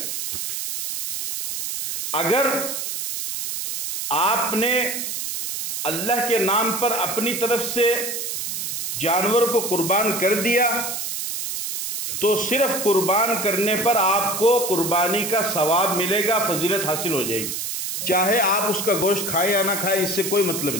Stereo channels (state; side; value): noise; right; hiss, 4 dB below the sound